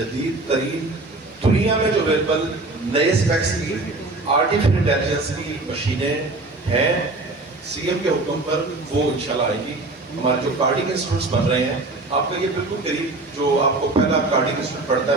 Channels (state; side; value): quieter; left; 3.1 dB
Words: ترین دنیا میں جو اویلیبل نئے اسپیکس کی آرٹیفیشل انٹیلیجنس کی مشینیں ہیں. CM کے حکم پر وہ انشاءاللہ آئے گی. ہمارے جو کارڈک انسٹیٹیوٹس بن رہے ہیں, آپ کا یہ بالکل قریب جو آپ کو پہلا کارڈک انسٹیٹیوٹ پڑھتا